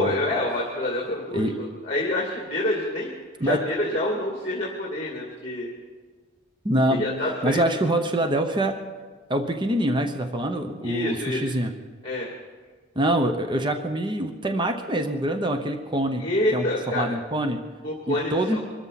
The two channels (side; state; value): both; normal; correlation 0.44